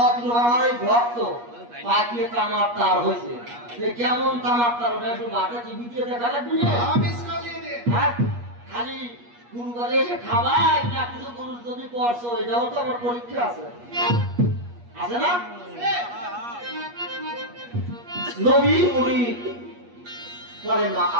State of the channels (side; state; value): left; late; 8.4 ms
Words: আমার এই ভক্ত পাকিয়ে তামার তার হয়েছে, কেমন তামার তার ওটা একটু মাঠে টিভি দিয়ে দেখা লাগবে। হ্যাঁ, খালি গুরুবারে এসে খাবাই না কিছু গুরু যদি করছো, এটাও তো আমার পরীক্ষা আছে, আছে না? নবী মুনি পরে না